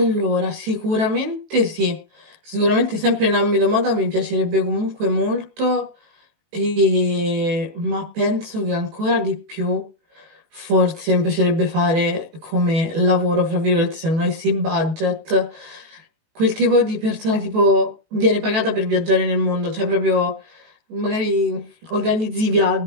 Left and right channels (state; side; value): late; left; 19 ms